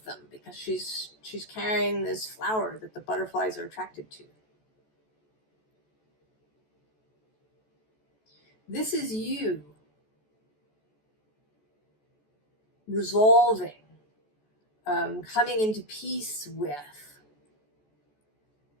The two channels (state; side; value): late; right; 14 ms